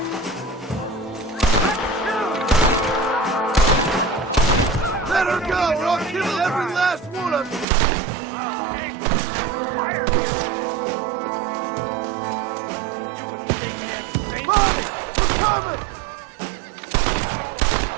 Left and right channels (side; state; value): left; drops out; at 7.7 s